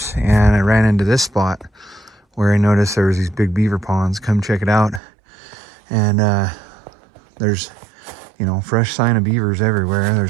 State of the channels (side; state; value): left; drops out; at 5.0 s